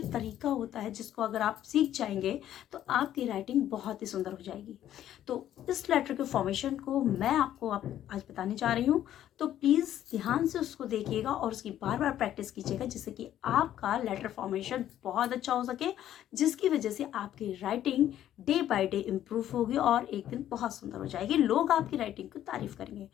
तरीका होता है जिसको अगर आप सीख जाएंगे तो आपकी राइटिंग बहुत ही सुंदर हो जाएगी। तो इस लेटर के फॉर्मेशन को मैं आपको आज बताने जा रही हूँ, तो प्लीज ध्यान से उसको देखिएगा और उसकी बार बार प्रैक्टिस कीजिएगा जिससे कि आपका लेटर फॉर्मेशन बहुत अच्छा हो सके, जिसकी वजह से आपकी writing day by day improve होगी और एक दिन बहुत सुंदर हो जाएगी। लोग आपकी राइटिंग की तारीफ करेंगे।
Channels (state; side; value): quieter; right; 11.7 dB